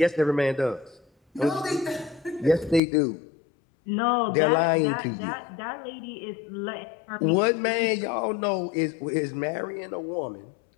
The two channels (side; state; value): right; drops out; at 2.8 s